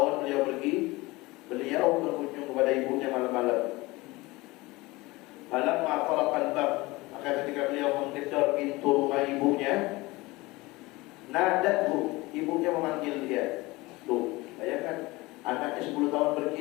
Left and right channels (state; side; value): quieter; right; 21.6 dB